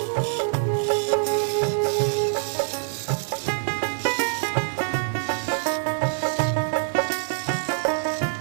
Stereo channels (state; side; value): silent; left; digital silence